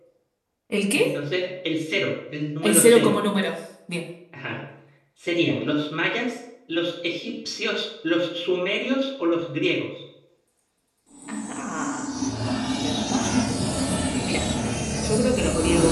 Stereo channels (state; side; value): identical; both; correlation 1.00